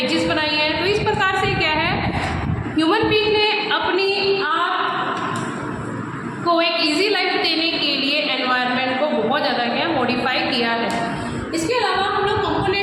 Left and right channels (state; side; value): identical; both; correlation 1.00